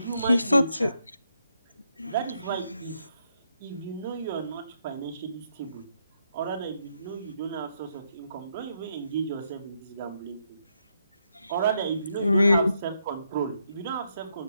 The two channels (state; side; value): inverted; both; correlation -0.78